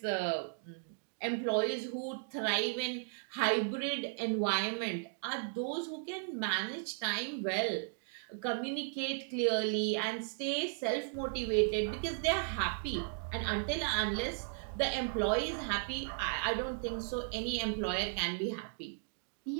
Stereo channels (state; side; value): silent; left; digital silence